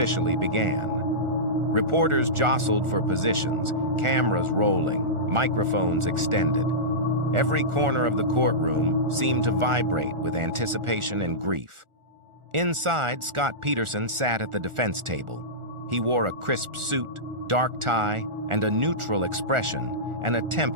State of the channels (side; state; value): left; late; 1.4 ms